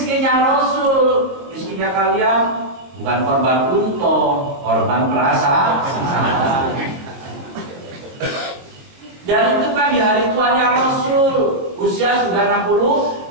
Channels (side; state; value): left; late; 22 ms